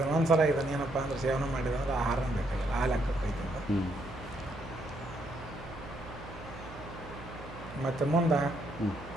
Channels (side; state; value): right; noise; hum, 15 dB below the sound